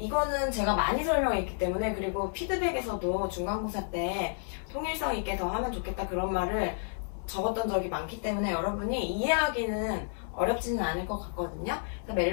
제가 많이 설명했기 때문에 그리고 피드백에서도 중간고사 때 통일성 있게 더 하면 좋겠다 그런 말을 적었던 적이 많기 때문에 여러분이 이해하기는 어렵지는 않을 것 같거든요. 그래서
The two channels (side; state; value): right; silent; 56 dB below the other